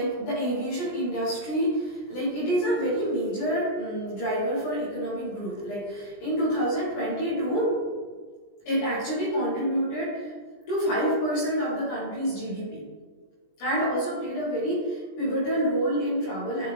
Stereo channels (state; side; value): late; right; 20 ms